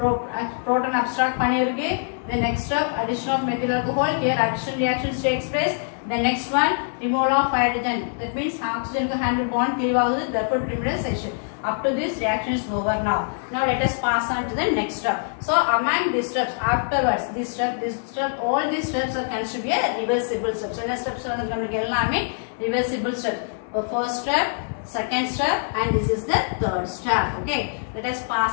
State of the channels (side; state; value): right; silent; 63 dB below the other